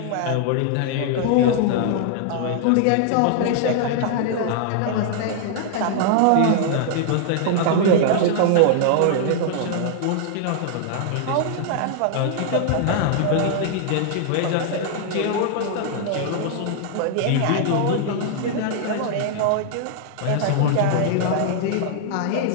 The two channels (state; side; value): different; both; correlation -0.01